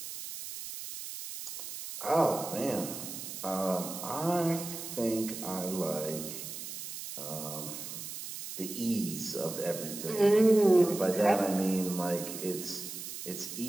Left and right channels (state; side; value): noise; right; hiss, 9 dB below the sound